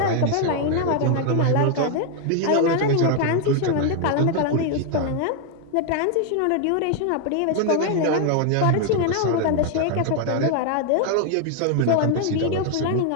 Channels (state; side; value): different; both; correlation 0.00